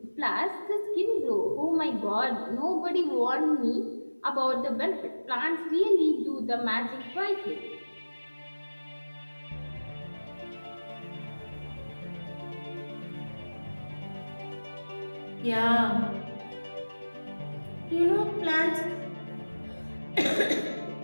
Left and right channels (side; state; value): both; inverted; correlation -1.00